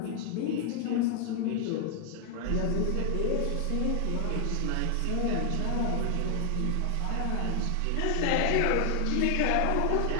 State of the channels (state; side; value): different; both; correlation 0.00